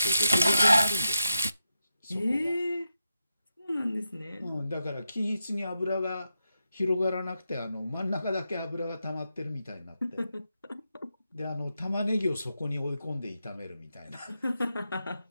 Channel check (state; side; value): inverted; both; correlation -0.87